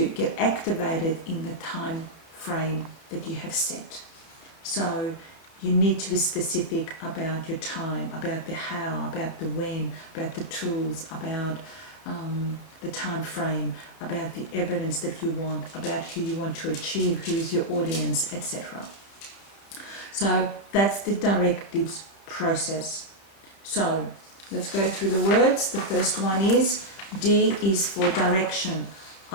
get activated in the time frame that you have set. So you need to be specific about your time, about the how, about the when, about the tools, about the time frame, about the evidence that you want, about who you want to achieve, who is your audience, etc. So that's the directives process. So let's go through the words. The first one is D is for direction,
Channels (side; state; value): right; late; 31 ms